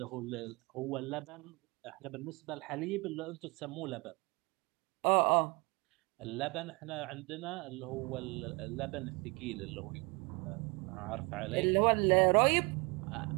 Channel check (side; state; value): left; quieter; 27.9 dB